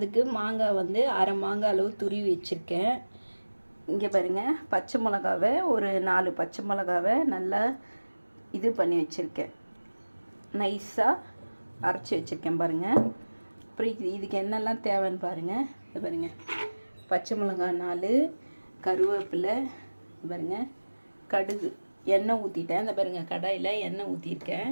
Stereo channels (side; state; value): both; inverted; correlation -1.00